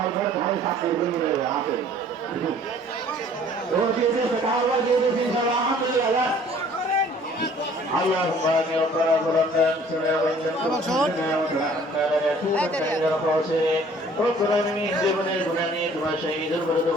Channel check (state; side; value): normal; both; correlation 0.54